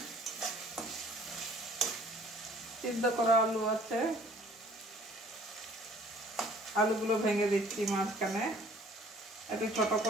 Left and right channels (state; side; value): normal; both; correlation 0.54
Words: সিদ্ধ করা আলু আছে। আলুগুলো ভেঙে দিচ্ছি মাঝখানে, একটু ছোট